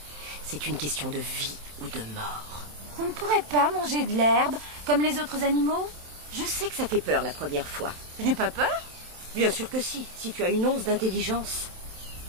C'est une question de vie ou de mort. On ne pourrait pas manger de l'herbe comme les autres animaux? Je sais que ça fait peur la première fois. Je n'ai pas peur. Bien sûr que si tu as une once d'intelligence.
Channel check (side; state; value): left; late; 27 ms